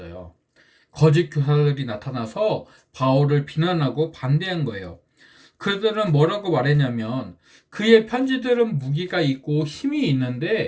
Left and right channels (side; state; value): both; identical; correlation 1.00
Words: 거짓 교사들이 나타나서 바울을 비난하고 반대한 거예요. 그들은 뭐라고 말했냐면 그의 편지들은 무기가 있고 힘이